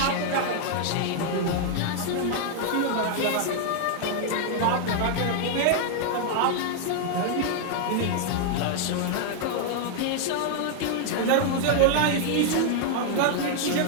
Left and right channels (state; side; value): different; both; correlation 0.00